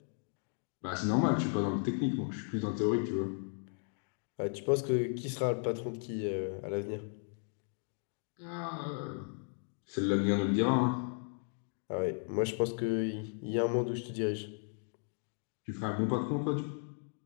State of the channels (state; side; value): silent; right; 54 dB below the other